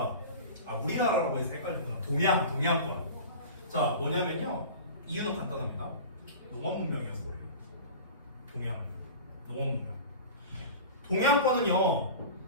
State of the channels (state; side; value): inverted; both; correlation -0.35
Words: 우리나라라고 해서 헷갈렸구나. 동양권. 자, 뭐냐면요, 이유는 간단합니다. 농업 문명이어서 그래요. 농업 문명. 동양권은요,